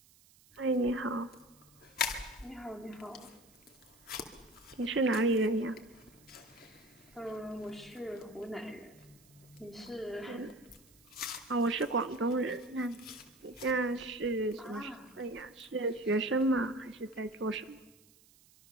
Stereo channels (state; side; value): noise; right; hiss, 27 dB below the sound